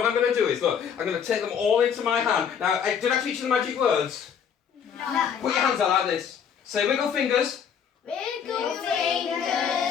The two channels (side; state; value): right; quieter; 7.6 dB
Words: I'm going to do is, look, I'm going to take them all into my hand. Now, did I teach you the magic words? No. Put your hands out like this. Say wiggle fingers. Wiggle